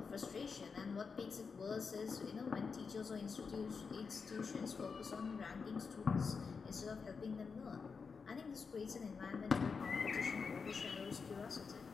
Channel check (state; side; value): quieter; right; 5.3 dB